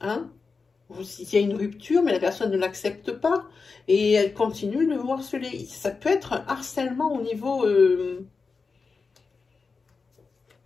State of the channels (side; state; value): right; quieter; 4.6 dB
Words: Il y a une rupture, mais la personne ne l'accepte pas et elle continue de vous harceler. Ça peut être un harcèlement au